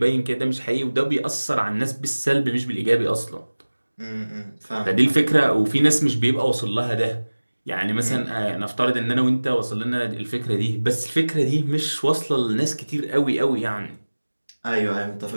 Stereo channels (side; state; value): both; inverted; correlation -1.00